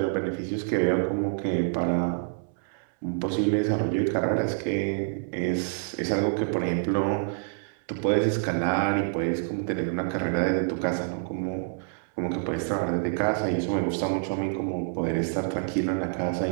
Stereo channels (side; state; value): left; silent; 60 dB below the other